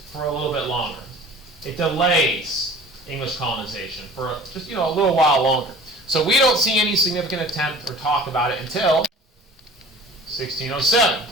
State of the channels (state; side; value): normal; both; correlation 0.44